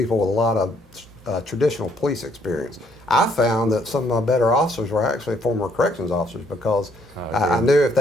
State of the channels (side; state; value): both; normal; correlation 0.67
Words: with a lot of traditional police experience. I found that some of my better officers were actually former corrections officers, because I knew if